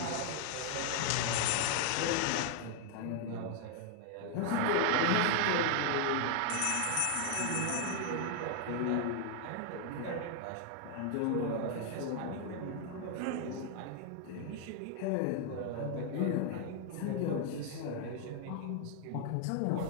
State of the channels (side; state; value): both; different; correlation 0.00